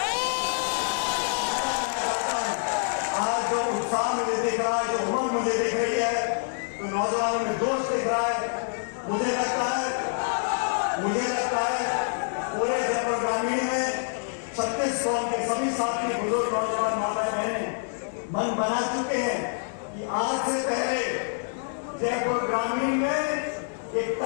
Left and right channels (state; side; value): silent; right; digital silence